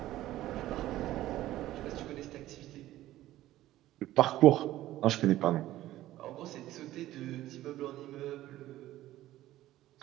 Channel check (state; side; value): quieter; left; 14.9 dB